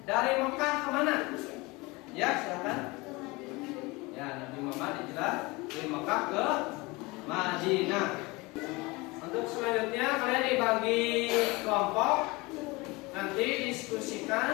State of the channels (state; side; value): quieter; right; 24.0 dB